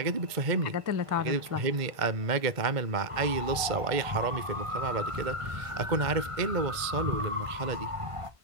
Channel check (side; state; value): left; late; 1.5 ms